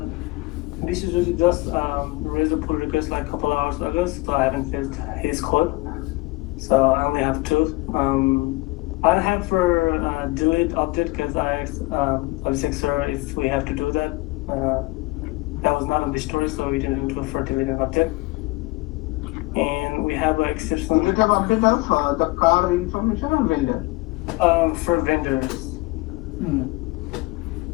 this is really just raise a pull request like a couple hours ago, so I haven't filled his code. So I only have 2. I have for delete update because I asked sir if we have to do that. That was not on the story, so we didn't do it for delete and update. And we have an exception. Do you have update of the car information or vendor? For vendors.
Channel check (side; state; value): right; quieter; 22.5 dB